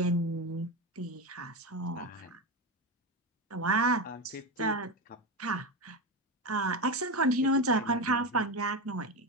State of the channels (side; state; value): both; normal; correlation 0.17